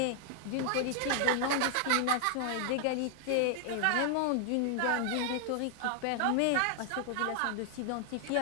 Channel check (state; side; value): different; both; correlation 0.00